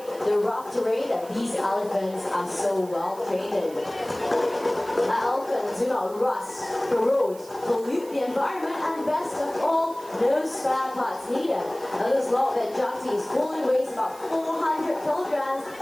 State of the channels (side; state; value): right; noise; hiss, 21 dB below the sound